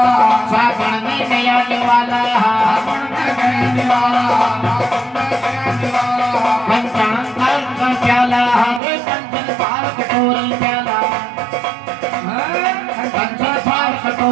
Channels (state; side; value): drops out; left; at 8.8 s